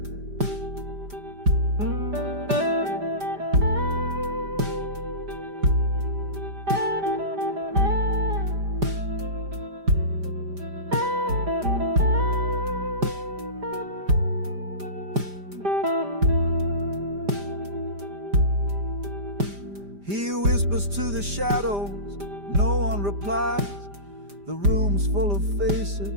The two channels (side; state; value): left; late; 5.0 ms